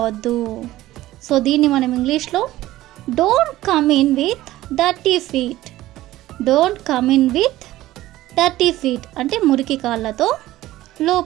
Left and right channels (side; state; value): left; quieter; 15.9 dB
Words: సో దీన్ని మనం ఇంగ్లీష్లో don't come in with dirty feet, don't come in with dirty feet అంటే మురికి కాళ్ళతో